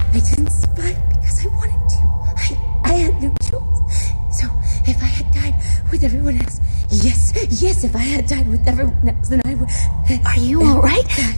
I didn't survive because I wanted to. I had no choice. So if I had died with everyone else, yes, if I had died with everyone else, then I would. Are you all right?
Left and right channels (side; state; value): both; inverted; correlation -1.00